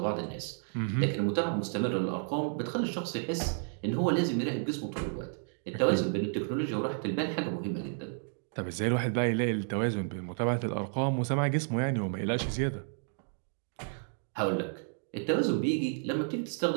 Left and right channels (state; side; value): silent; left; 57 dB below the other